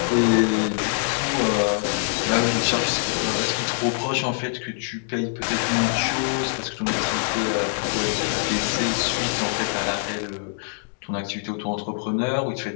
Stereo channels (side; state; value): right; silent; digital silence